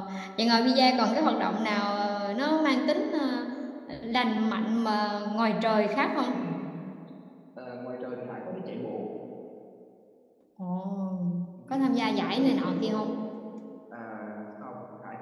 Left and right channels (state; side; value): identical; both; correlation 1.00